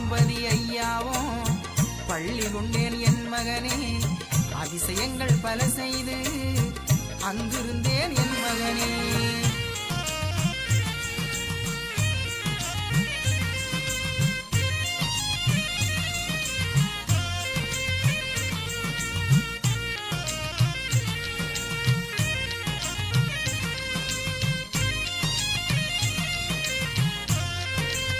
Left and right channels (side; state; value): both; identical; correlation 1.00